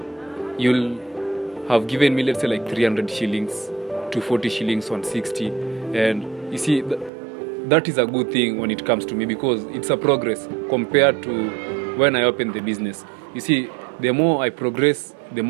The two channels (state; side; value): drops out; left; at 7.1 s